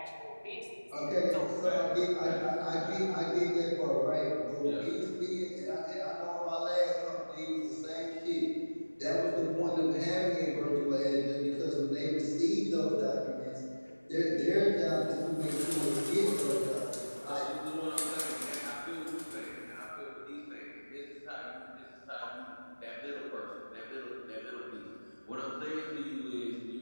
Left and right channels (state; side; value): inverted; both; correlation -1.00